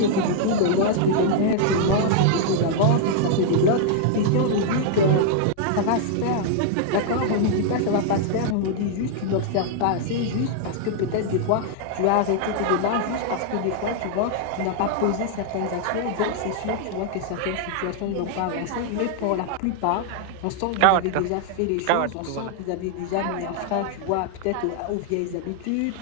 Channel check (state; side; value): different; both; correlation -0.01